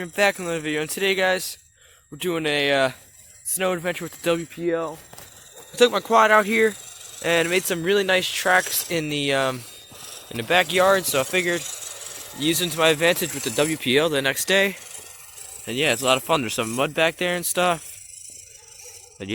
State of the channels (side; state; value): both; identical; correlation 1.00